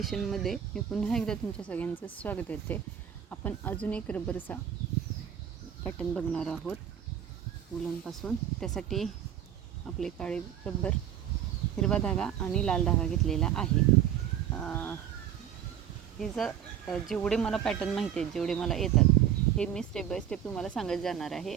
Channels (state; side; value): quieter; left; 9.6 dB